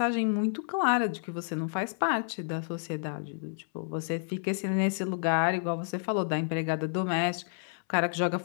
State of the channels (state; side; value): silent; right; 58 dB below the other